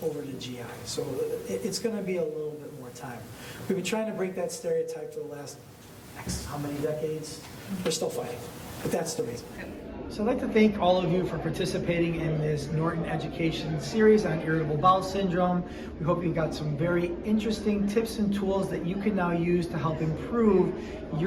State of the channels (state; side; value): identical; both; correlation 1.00